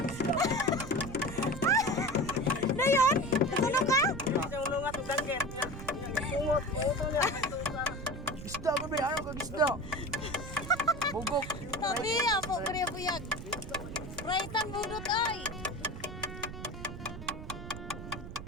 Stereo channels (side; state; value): right; noise; rumble, 10 dB below the sound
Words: Dayon, natulog ka? Isang lungat ng danggit. Bungot. Bungot niya. Isda ko ba? Ano kag isda? Bugok. Tabi, apo kaya buyag. Raitan budot ay.